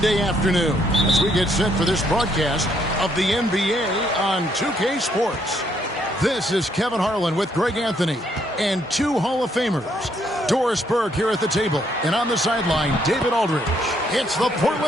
afternoon as we get set for this broadcast of the NBA on 2K Sports. This is Kevin Harlan with Greg Anthony and two Hall of Famers. Doris Burke here at the table, and on the sideline, David Aldridge. It's the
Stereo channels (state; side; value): normal; both; correlation 0.71